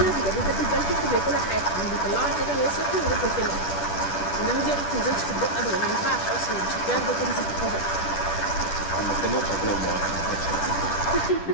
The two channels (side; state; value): right; late; 10 ms